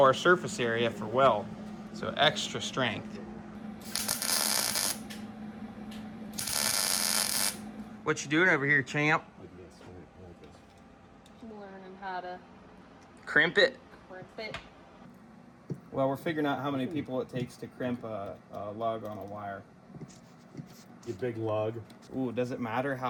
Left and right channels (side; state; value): both; identical; correlation 1.00